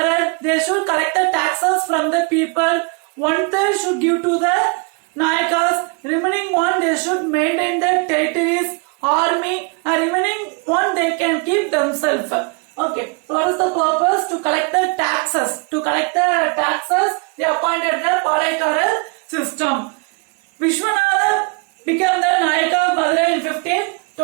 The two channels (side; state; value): left; quieter; 32.3 dB